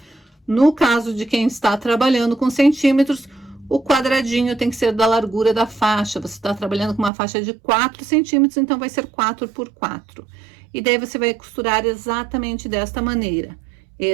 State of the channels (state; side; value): drops out; left; at 7.1 s